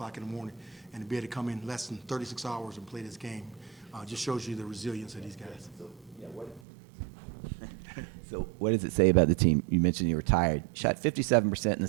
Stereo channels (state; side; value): drops out; left; at 6.6 s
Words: in the morning, and to be able to come in less than 36 hours and play this game, just shows you the resilience of these guys. So what does it say about the team? You mentioned you were tired. Shot 57% in the